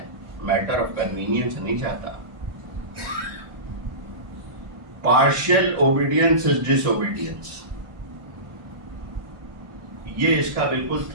میٹر آف کنوینئنس نہیں چاہتا. Partial obedience is disobedience, یہ اس کا بالکل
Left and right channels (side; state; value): left; late; 1.2 ms